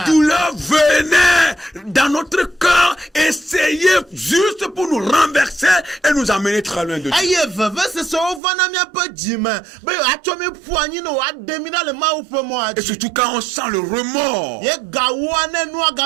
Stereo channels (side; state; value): left; drops out; at 8.4 s